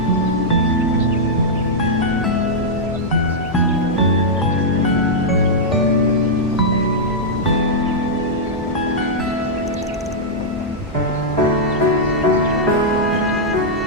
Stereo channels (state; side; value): normal; both; correlation -0.07